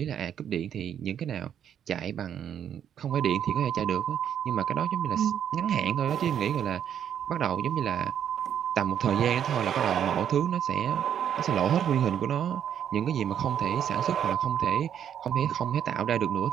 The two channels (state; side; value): quieter; left; 9.2 dB